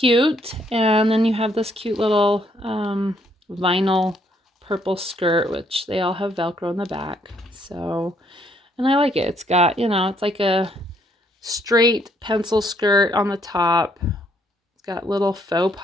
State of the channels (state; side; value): normal; both; correlation 0.69